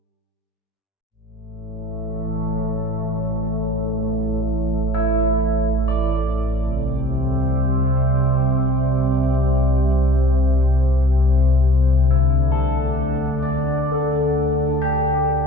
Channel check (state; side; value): normal; both; correlation 0.43